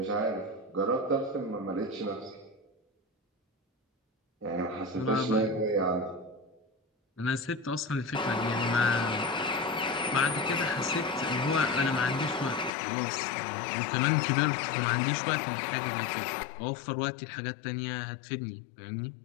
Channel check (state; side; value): drops out; right; at 12.7 s